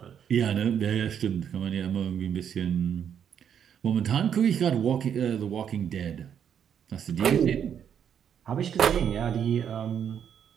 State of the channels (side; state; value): left; quieter; 8.5 dB